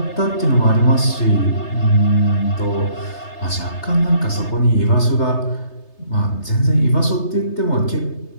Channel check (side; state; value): right; late; 3.3 ms